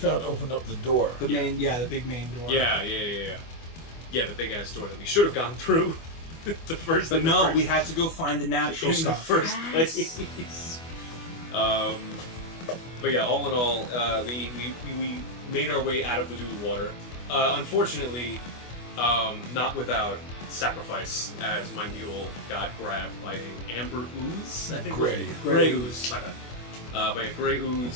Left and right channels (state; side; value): late; right; 24 ms